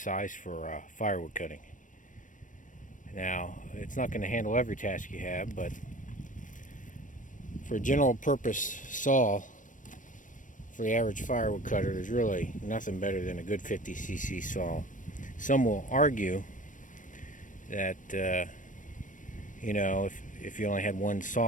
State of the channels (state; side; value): late; right; 0.37 ms